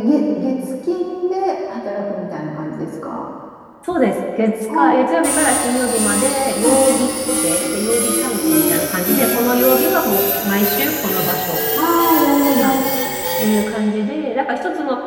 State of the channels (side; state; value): both; identical; correlation 1.00